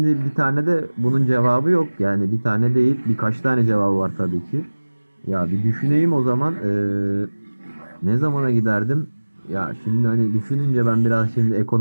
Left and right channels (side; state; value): both; inverted; correlation -1.00